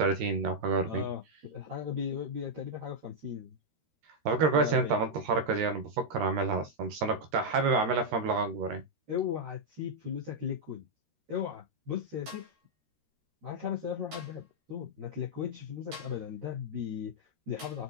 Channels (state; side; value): late; left; 13 ms